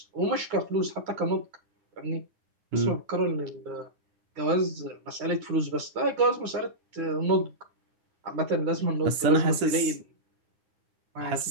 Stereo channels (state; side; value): late; left; 10 ms